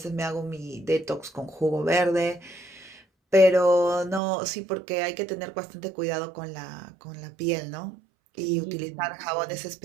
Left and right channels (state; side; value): drops out; left; at 4.2 s